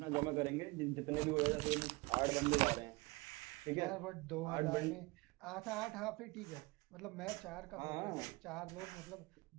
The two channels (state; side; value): quieter; left; 24.3 dB